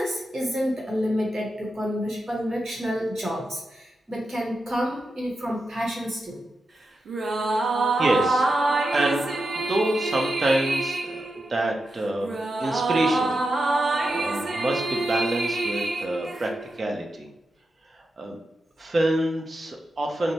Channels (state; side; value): normal; both; correlation 0.89